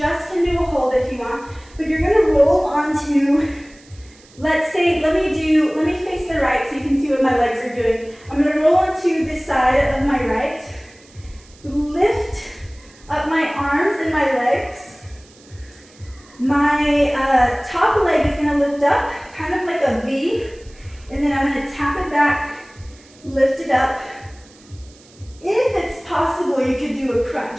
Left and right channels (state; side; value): noise; right; hiss, 26 dB below the sound